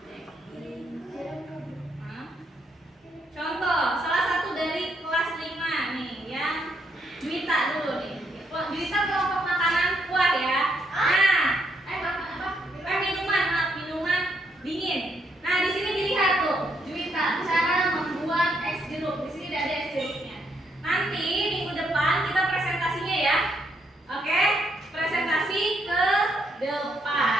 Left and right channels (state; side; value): normal; both; correlation 0.75